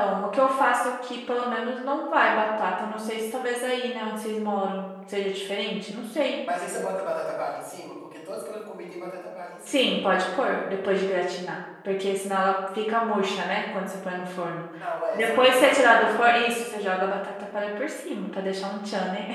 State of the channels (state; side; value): identical; both; correlation 1.00